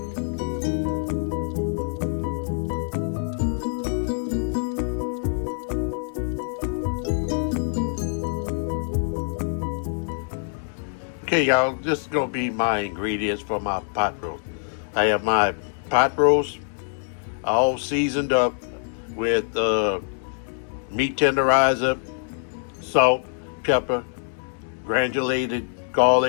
Okay, y'all, this is going to be my ingredients for my pot roast. I have my pot roast all seasoned up with meat tenderizer, salt, pepper, granulated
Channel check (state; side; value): silent; right; digital silence